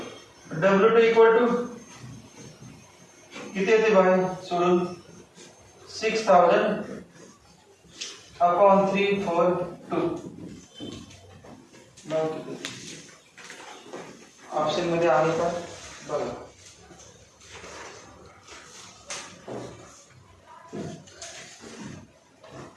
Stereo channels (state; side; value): identical; both; correlation 1.00